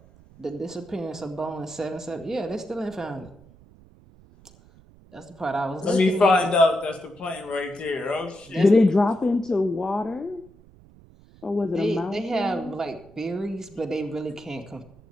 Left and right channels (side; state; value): right; noise; rumble, 25 dB below the sound